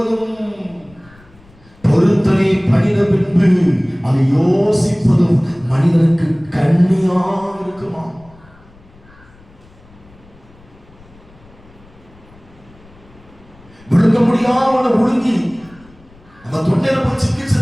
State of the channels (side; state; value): left; noise; rumble, 26 dB below the sound